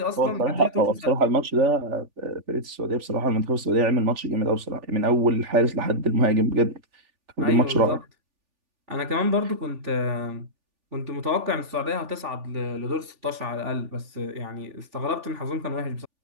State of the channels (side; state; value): left; late; 3.4 ms